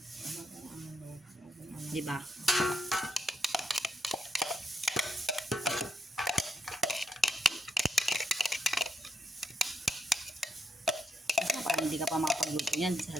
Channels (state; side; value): normal; both; correlation 0.79